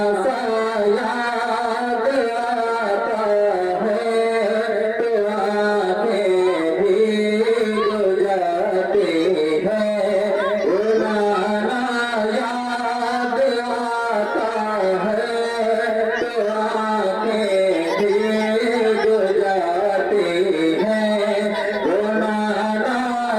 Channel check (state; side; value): identical; both; correlation 1.00